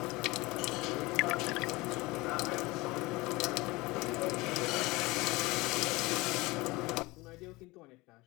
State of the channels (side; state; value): right; quieter; 22.4 dB